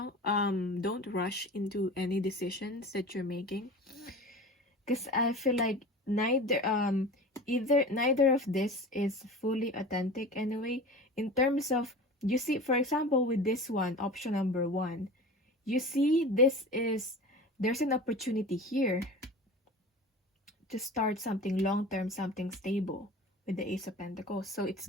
Don't rush into any decisions that you're making. Because I feel like neither of this is fully authentic anyway. In terms of, you see, for example, with this one, option number 1, you see there's an opportunity here to start something long-term, something stable with the Ace of Pentacles. So it's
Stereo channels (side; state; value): both; normal; correlation 0.35